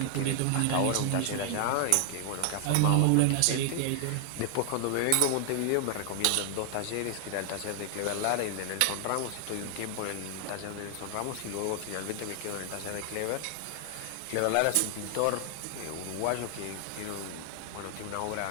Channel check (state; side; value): different; both; correlation 0.00